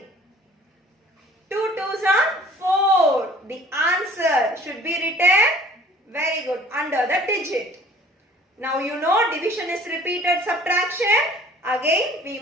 2 twos are 4. The answer should be written, very good, under the digit. Now you know division is repeated subtraction. Again we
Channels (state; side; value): normal; both; correlation 0.51